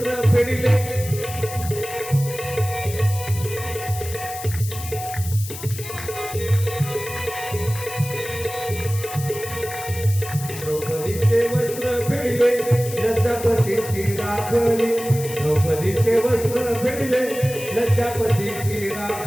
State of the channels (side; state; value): left; noise; hiss, 11 dB below the sound